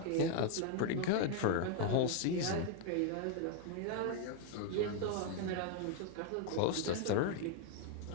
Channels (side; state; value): both; different; correlation 0.00